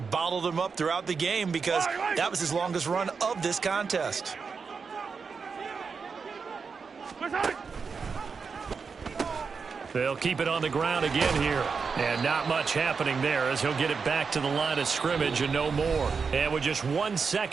them up throughout the game because that was his longest run of this contest. They'll keep it on the ground again here. And not much happening there as he'll get it back to the line of scrimmage and no more. And with just 1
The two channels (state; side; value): quieter; left; 5.4 dB